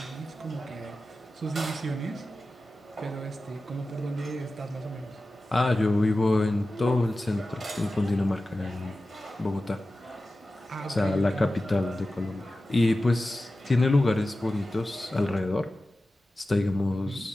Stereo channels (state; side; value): normal; both; correlation 0.94